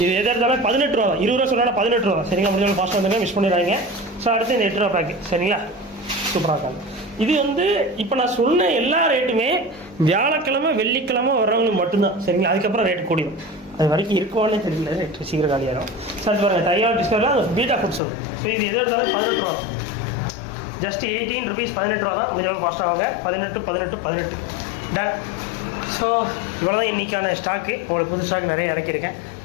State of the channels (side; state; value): right; drops out; at 18.0 s